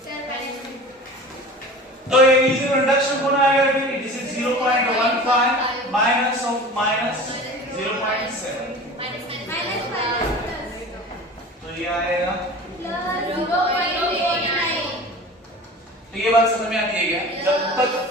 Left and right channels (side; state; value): both; normal; correlation 0.38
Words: तो ये E0 रिडक्शन कौन आएगा? This is 0.15 minus of minus 0.7 तो ये आएगा। तो ये बात समझ में आती है क्या? जब तक